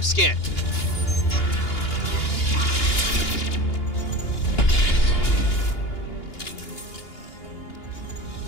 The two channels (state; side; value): late; right; 2.8 ms